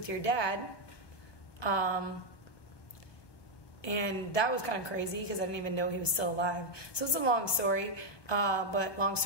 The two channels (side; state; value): right; late; 1.2 ms